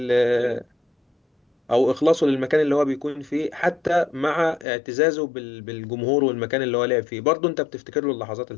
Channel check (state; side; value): drops out; right; at 4.7 s